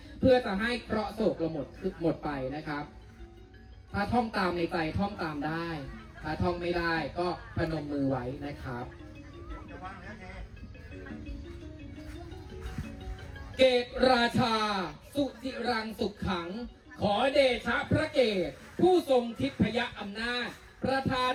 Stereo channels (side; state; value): both; identical; correlation 1.00